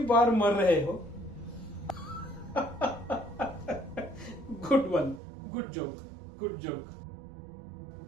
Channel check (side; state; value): left; drops out; at 5.2 s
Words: बार मर रहे हो? Good one, good joke, good joke.